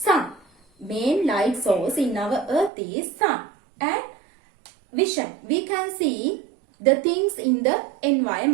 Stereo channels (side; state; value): left; drops out; at 2.7 s